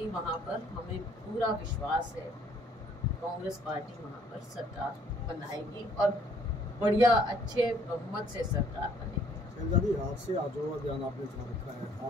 वहाँ पर, हमें पूरा विश्वास है, कांग्रेस पार्टी वहाँ पर सरकार बनाएगी और बढ़िया अच्छे बहुमत से सरकार बनेगी। शैलजा जी, आज से आजो अभियान आपने चला रखा है,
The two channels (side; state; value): both; normal; correlation 0.62